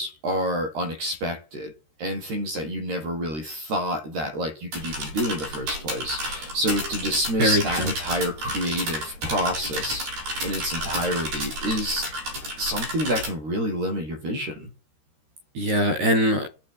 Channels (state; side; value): late; left; 13 ms